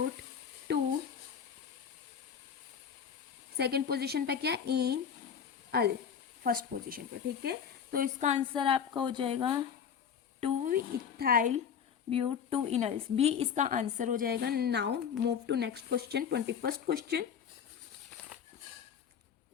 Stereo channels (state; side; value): quieter; right; 7.6 dB